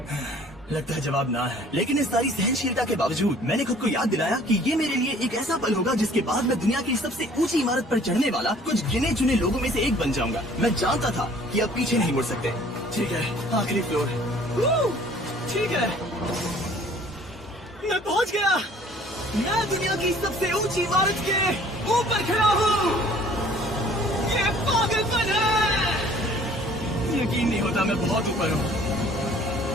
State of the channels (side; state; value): both; normal; correlation 0.54